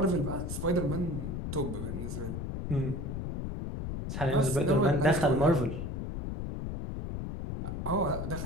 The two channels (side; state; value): left; noise; rumble, 5 dB below the sound